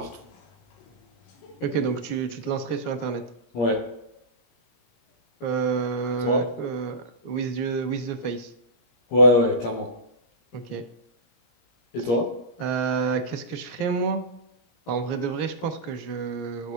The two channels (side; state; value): right; late; 17 ms